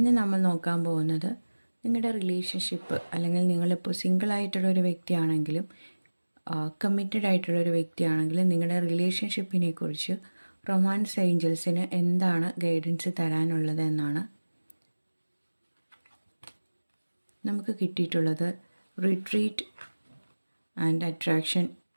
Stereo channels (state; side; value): inverted; both; correlation -1.00